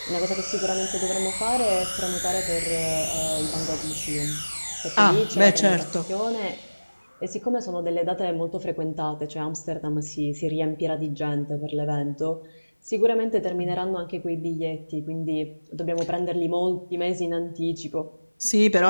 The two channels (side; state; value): both; inverted; correlation -1.00